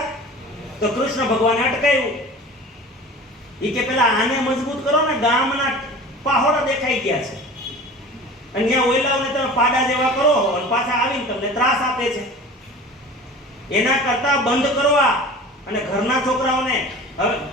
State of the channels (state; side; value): normal; both; correlation 0.39